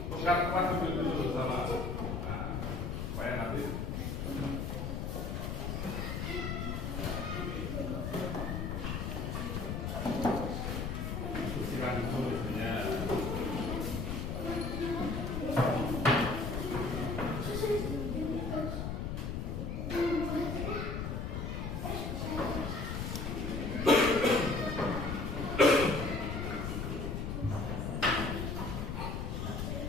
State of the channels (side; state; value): left; noise; rumble, 2 dB below the sound